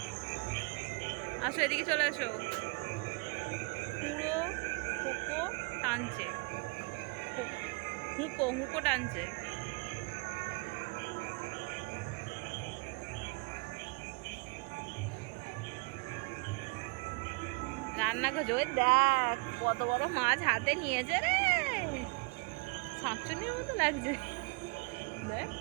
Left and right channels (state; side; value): quieter; left; 31.3 dB